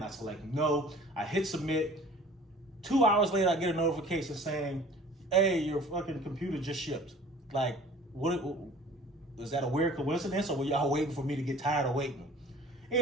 I select no. I hit submit. 2 hours later I get a notification saying, hey, your fucking computer just shipped. Like, what is that a weird coincidence, or were y'all waiting for me to get tired of waiting?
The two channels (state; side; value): normal; both; correlation 0.48